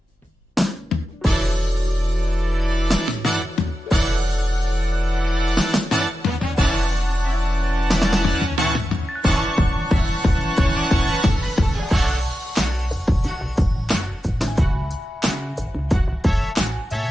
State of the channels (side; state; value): both; normal; correlation 0.91